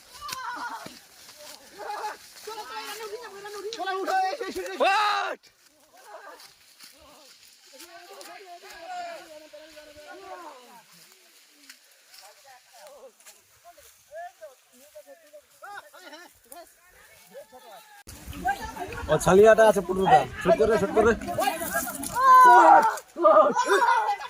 ও ছালিয়াটা আছে পুরোটা শুট করে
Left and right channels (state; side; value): identical; both; correlation 1.00